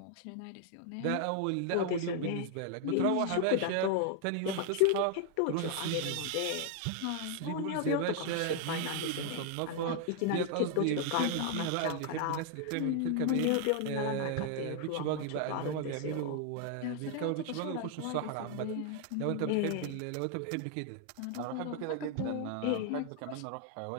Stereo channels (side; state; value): both; different; correlation 0.00